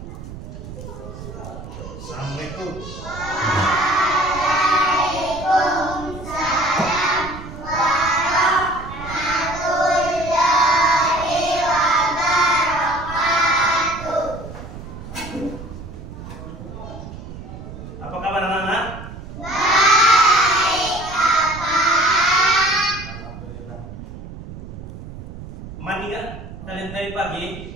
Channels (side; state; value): right; noise; rumble, 12 dB below the sound